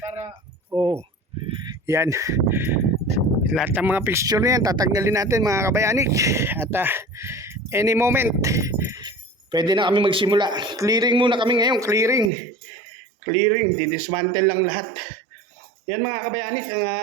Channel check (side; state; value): left; drops out; at 12.3 s